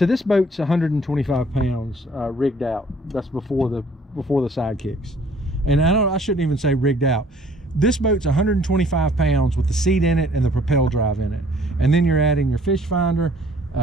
this boat's 125 pounds rigged out. That's before the sidekicks. And I shouldn't even say rigged out. This boat's 125 pounds with the seat in it and the Propel drive in it. And then you're adding your fish finder,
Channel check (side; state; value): both; normal; correlation 0.57